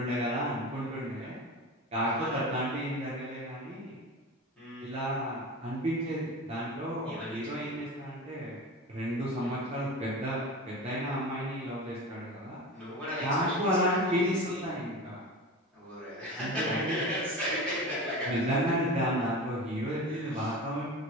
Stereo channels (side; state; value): both; normal; correlation 0.31